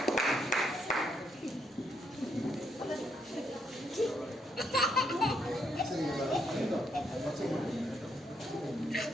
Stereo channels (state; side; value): normal; both; correlation 0.75